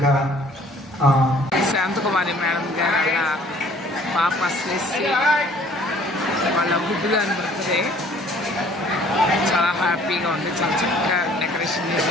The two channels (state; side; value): normal; both; correlation 0.56